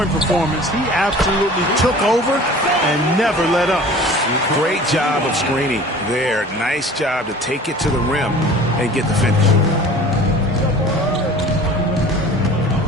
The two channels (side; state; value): both; normal; correlation 0.44